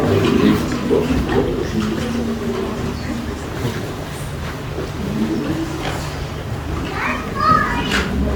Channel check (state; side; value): identical; both; correlation 1.00